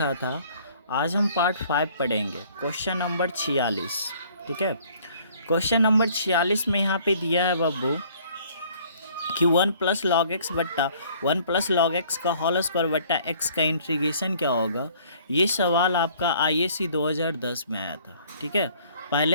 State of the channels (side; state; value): both; inverted; correlation -0.57